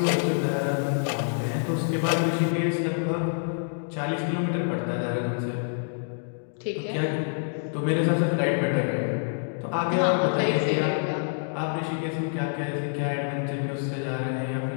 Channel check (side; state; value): right; silent; digital silence